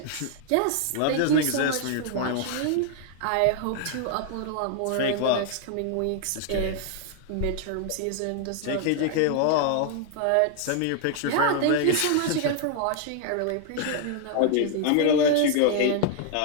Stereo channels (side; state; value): both; different; correlation 0.00